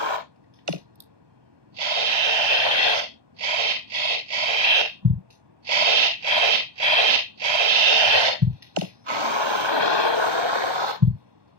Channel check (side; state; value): left; late; 1.2 ms